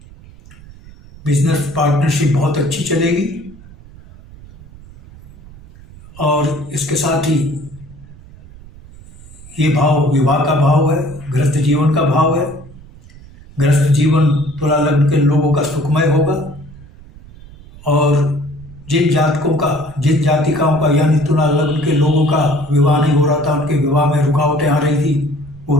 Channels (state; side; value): noise; right; rumble, 20 dB below the sound